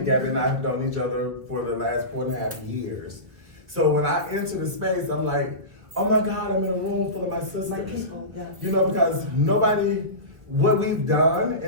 and I have known each other for the last 4.5 years. So when I enter the space, I'm like, oh my God, I'm in a room full of my sisters. My people, yeah. You know, because what we've done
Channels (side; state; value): left; late; 1.8 ms